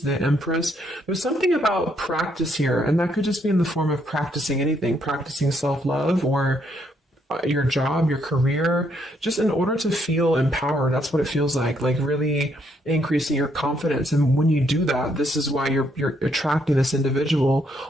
the Empress. There's something about practice here, and that could just be in the form of practicing anything, practicing self-love or your job, your career, just in order to feel empowered. That's what it feels like really increasing your confidence. And when you do that, this is why you're attracting this individual,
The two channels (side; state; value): both; normal; correlation 0.73